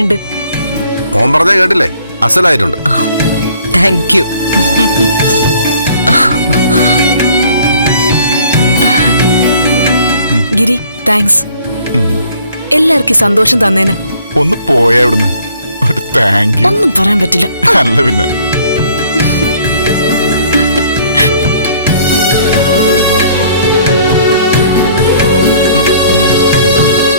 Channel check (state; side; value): inverted; both; correlation -0.58